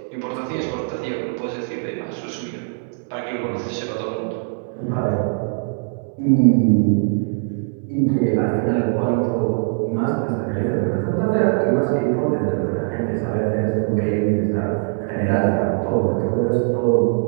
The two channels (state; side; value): silent; left; 65 dB below the other